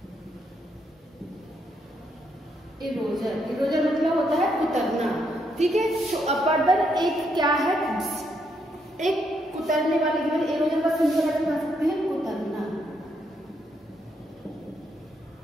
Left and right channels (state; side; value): normal; both; correlation 0.76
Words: इरोजर, इरोजर मतलब होता है कुतरना। ठीक है, तो अपर्दन एक क्या है? एक कुतरने वाले की वजह इरोजन का सिंपल अर्थ बता सकते हैं कुतरना।